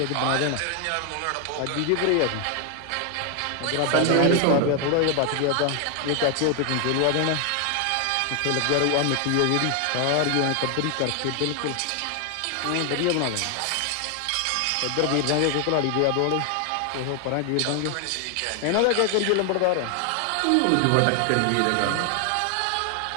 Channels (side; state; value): both; different; correlation 0.00